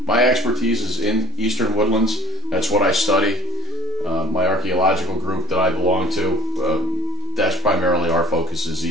my expertise is in Eastern Woodlands. That's what I study. My archaeological group that I belong to, that's primarily our focus, is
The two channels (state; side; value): normal; both; correlation 0.35